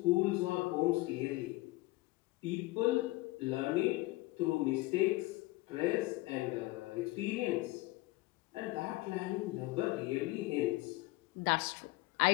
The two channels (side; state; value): right; quieter; 20.4 dB